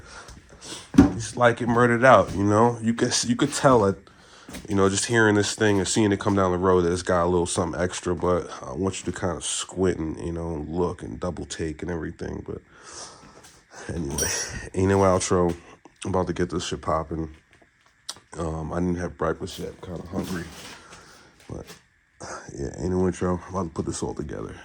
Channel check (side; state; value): both; identical; correlation 1.00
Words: just like it murdered out. You know, you could tell it. You know, just hearing this thing and seeing it come down the road, it's got a little something extra, but I want you to kind of squint and, you know, look and double take and everything. But anyway, ain't no outro. I'm about to get this shit popping. I didn't have breakfast yet. I'm kind of hungry. But yeah, ain't no intro. I'm about to put this all together.